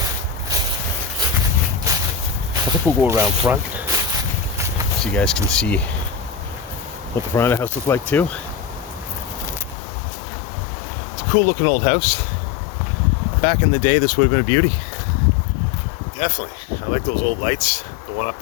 I think we'll go around front so you guys can see what the front of the house looked like too. It's a cool looking old house. Back in the day, this would have been a beauty. Definitely. I like those old lights. The one up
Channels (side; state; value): right; drops out; at 9.8 s